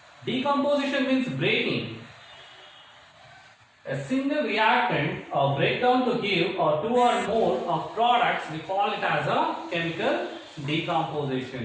Decomposition means breaking. A single reactant or breakdown to give two or more of products, we call it as a chemical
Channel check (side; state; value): both; identical; correlation 1.00